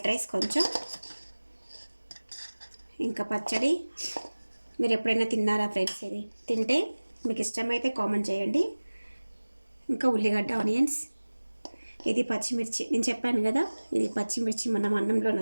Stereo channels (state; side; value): inverted; both; correlation -1.00